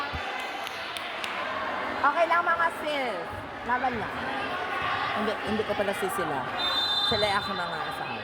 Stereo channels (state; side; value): identical; both; correlation 1.00